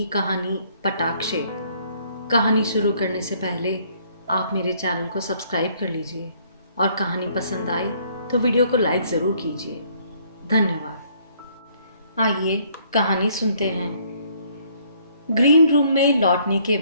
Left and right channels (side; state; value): both; inverted; correlation -0.64